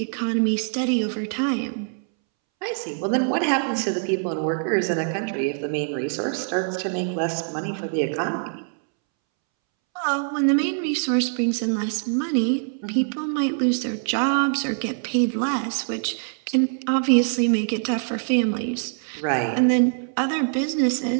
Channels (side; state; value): left; silent; 63 dB below the other